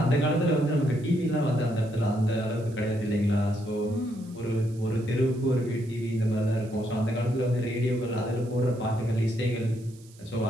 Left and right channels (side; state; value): right; noise; hiss, 26 dB below the sound